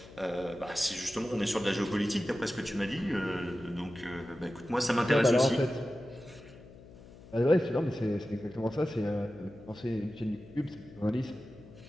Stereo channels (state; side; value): noise; left; hum, 19 dB below the sound